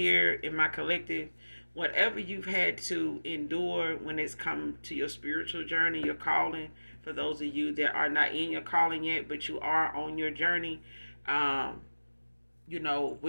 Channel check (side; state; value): both; inverted; correlation -1.00